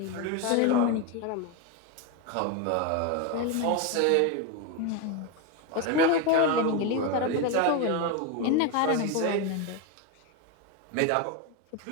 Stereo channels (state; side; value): different; both; correlation 0.02